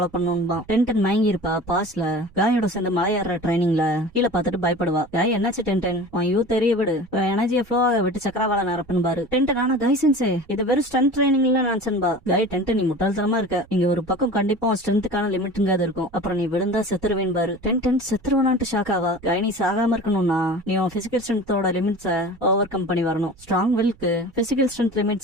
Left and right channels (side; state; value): right; noise; rumble, 26 dB below the sound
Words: பண்ணணும்பா. டென் மயங்கி இருப்பா. பாஸ்ல காயோட சேர்ந்து மலையேற ட்ரைனிங்ல கீழே பார்த்துட்டு பயப்படுவா. காய் என்னாச்சு டென் உன் யூ தெரிய விடு, எனர்ஜியை ஃப்ளோ விட்டு சக்கரவாள நிரப்புன்பாரு. டென் ஆனா காய் சென்சே இது வெறும் ஸ்ட்ரென்த் ட்ரைனிங்ல நினைச்சன்பா. காய் டென் நீ முட்டாள்தனமா இருக்க, இங்க ஒரு பக்கம் கண்டிப்பா ஸ்ட்ரென்த்துக்கான லிமிட்ங்காது இருக்கும், அப்புறம் நீ விழுந்தா செத்துருவேன் பாரு. டென் செத்துருவானான்ட்டு ஷாக் ஆவா. காய் நீ சாகாம இருக்கணும்னா நீ உன் பிசிக்கல் ஸ்ட்ரென்த்தோட லிமிட்ஸை ஓவர் கம் பண்ணி வரணும். ஸ்ட்ராங் வில்க்கு physical strength